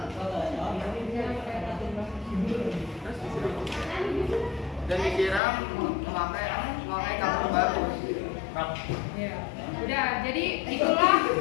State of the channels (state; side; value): drops out; right; at 5.4 s